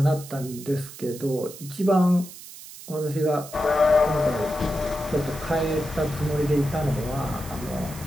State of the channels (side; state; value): right; noise; hiss, 15 dB below the sound